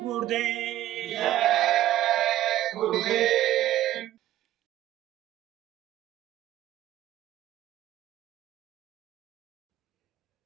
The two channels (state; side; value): quieter; left; 13.7 dB